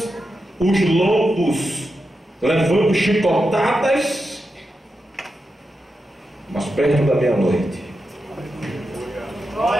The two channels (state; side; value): normal; both; correlation 0.88